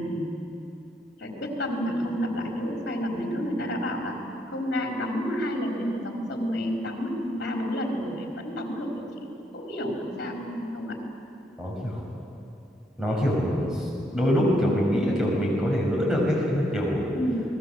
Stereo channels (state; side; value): normal; both; correlation 0.74